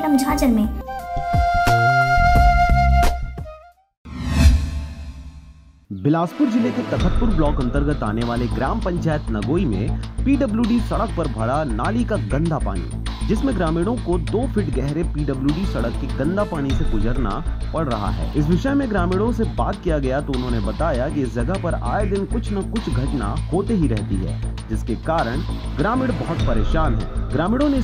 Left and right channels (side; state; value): both; identical; correlation 1.00